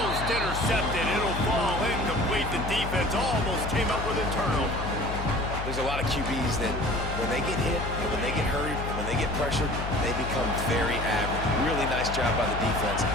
intercepted. It'll fall incomplete. The defense almost came up with a turnover. There's a lot of QBs that when they get hit and when they get hurried and when they get pressured, they become very average. Really nice job by the defense,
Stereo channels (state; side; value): noise; left; hum, 5 dB below the sound